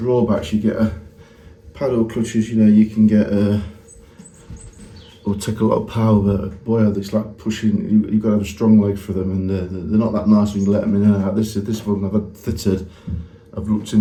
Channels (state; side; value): identical; both; correlation 1.00